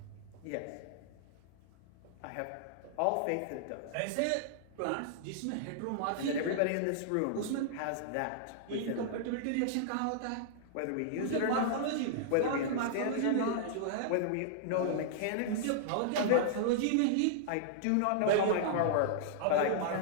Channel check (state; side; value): different; both; correlation -0.01